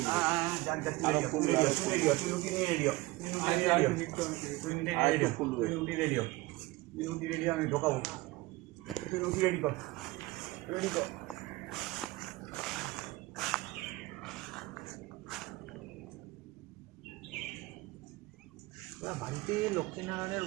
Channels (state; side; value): quieter; left; 20.4 dB